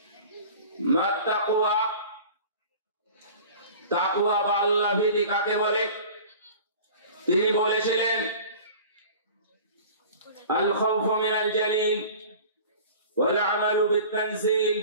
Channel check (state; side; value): inverted; both; correlation -0.42